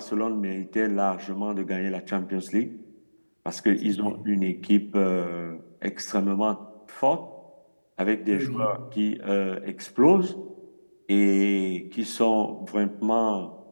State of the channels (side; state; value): both; inverted; correlation -1.00